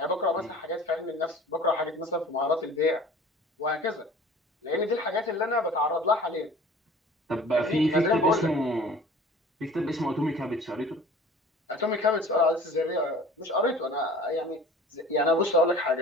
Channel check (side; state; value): both; normal; correlation 0.45